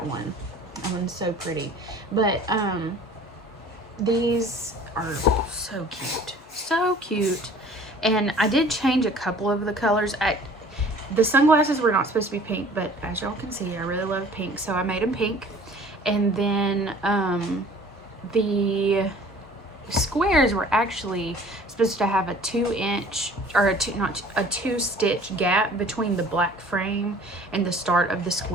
one. That one's so pretty. But these are so cute. So cute. And I did change a couple of the colors. The sunglasses were not supposed to be pink, but as y'all can see, I really love pink, so I made them pink. And then the squares were actually supposed to have a 2-inch or a 2-stitch gap between the black frame and the start of the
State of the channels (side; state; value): both; normal; correlation 0.49